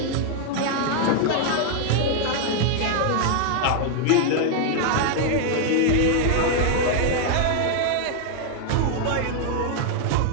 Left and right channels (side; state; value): both; different; correlation 0.00